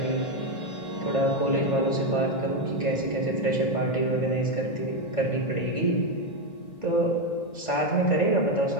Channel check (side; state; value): right; late; 1.5 ms